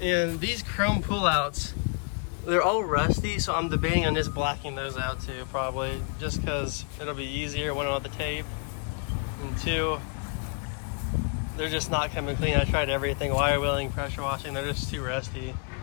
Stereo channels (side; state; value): right; quieter; 39.0 dB